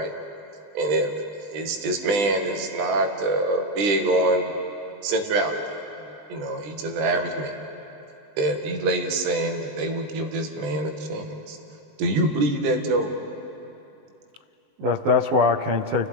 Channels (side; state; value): left; late; 20 ms